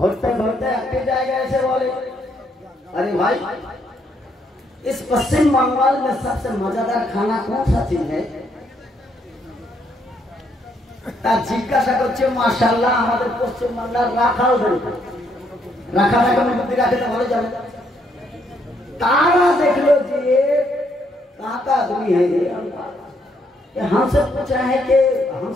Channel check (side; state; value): both; normal; correlation 0.72